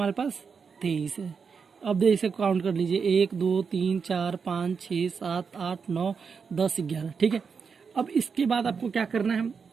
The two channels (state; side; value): quieter; left; 5.8 dB